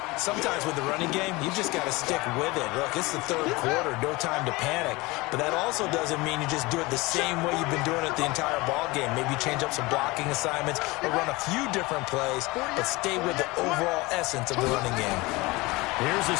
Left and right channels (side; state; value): right; quieter; 22.7 dB